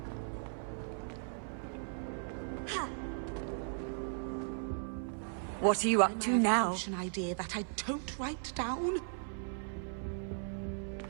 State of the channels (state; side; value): silent; left; 53 dB below the other